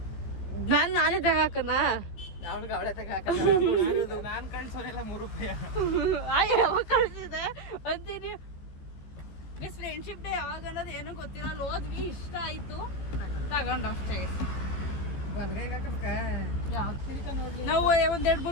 ನಾನೇ ತಗಾಕನ ಅವಳೆ ತಗಾಕ ನಾನು ಕಳ್ಸೋನೆಲ್ಲ 3 ರೂಪಾಯಿ ಯಾವಾಗ ಕಳ್ಸಿದೆ ಅಂತೀನಿ. ಫ್ರೆಂಡ್ಶಿಪ್ ಡೇ ಯಾವಾಗ ಅನ್ನೋದು ಏನೂ ಗೊತ್ತಿಲ್ಲ. ಅಲ್ಲಿ ಹೋದ್ವಿ, ಇಷ್ಟ ಆಯ್ತು, ತಗೊಂಡು ಅಷ್ಟೇ. ನಾವು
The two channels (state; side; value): late; right; 15 ms